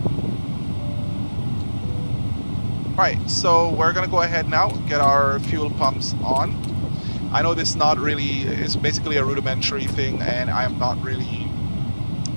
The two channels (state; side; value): inverted; both; correlation -1.00